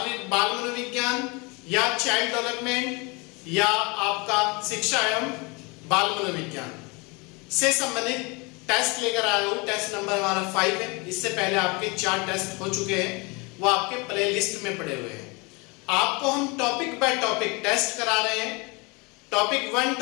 मनोविज्ञान या चाइल्ड डेवलपमेंट या आपका शिक्षा एवं बाल मनोविज्ञान से संबंधित टेस्ट लेकर आया हूँ। टेस्ट नंबर हमारा 5 है। इससे पहले आपके 4 टेस्ट हो चुके हैं, वो आपके प्ले लिस्ट में पड़े हुए हैं। आपको हम टॉपिक बाय टॉपिक टेस्ट करा रहे हैं। Topic 1,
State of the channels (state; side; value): quieter; right; 28.2 dB